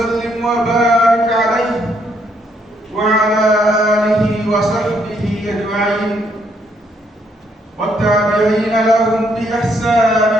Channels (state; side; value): normal; both; correlation 0.72